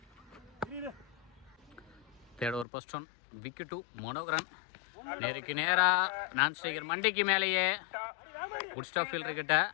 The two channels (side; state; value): right; drops out; at 2.7 s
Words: Third over first one wicket to Manoharan. நேருக்கு நேரா நான் ஸ்ட்ரைக்கர் மண்டிக்கு மேலேயே குட் ஸ்டாப் ஃபீல்டர் கிட்ட.